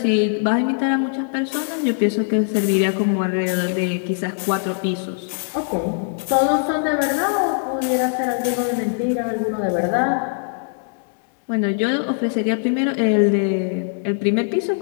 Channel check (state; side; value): silent; right; digital silence